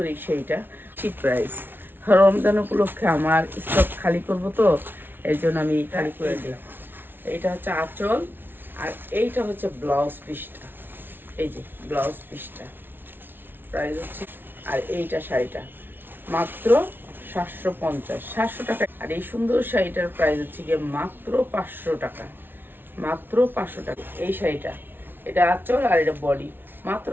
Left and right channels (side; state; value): left; late; 0.10 ms